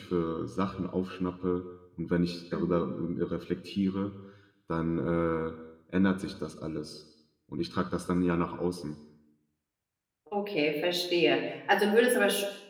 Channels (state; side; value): identical; both; correlation 1.00